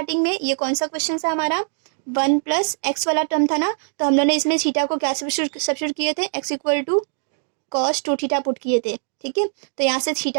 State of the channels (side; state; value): left; silent; 64 dB below the other